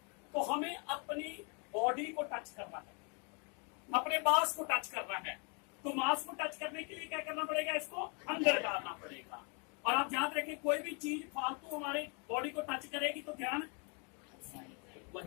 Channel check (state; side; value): quieter; right; 36.2 dB